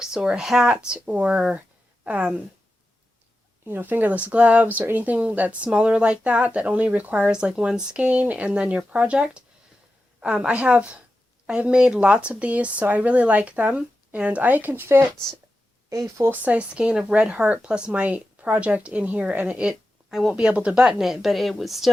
or a hat or fingerless gloves or anything that's smaller like that, that only requires like one skein and then your project. I have made lots of these, so I really like them, and I can fit a full-size skein of Red Heart plus my project in here, and I won't be able to button it, but it would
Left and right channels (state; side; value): normal; both; correlation 0.91